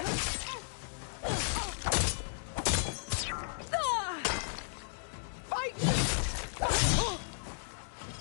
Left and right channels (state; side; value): silent; right; digital silence